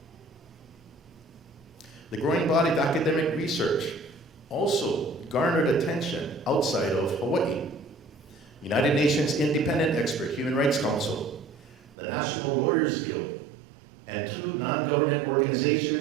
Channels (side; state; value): left; drops out; at 12.0 s